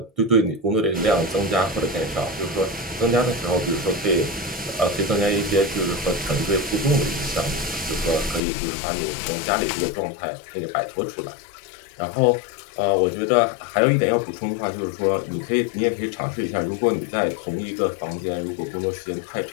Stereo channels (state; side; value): drops out; right; at 8.4 s